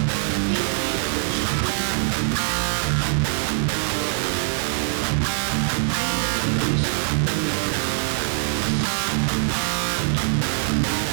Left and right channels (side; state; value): left; silent; 63 dB below the other